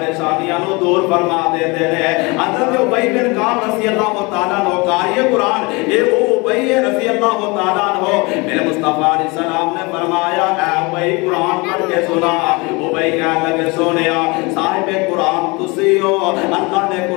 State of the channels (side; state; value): right; quieter; 26.8 dB